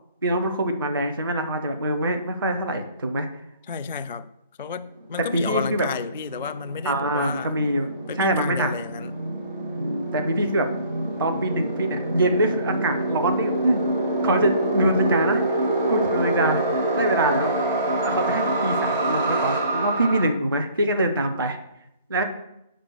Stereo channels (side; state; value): both; inverted; correlation -0.55